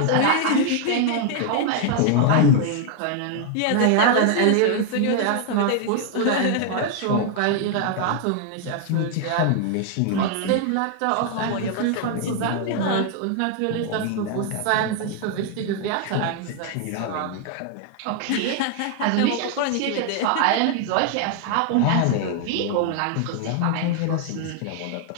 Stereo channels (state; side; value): different; both; correlation 0.00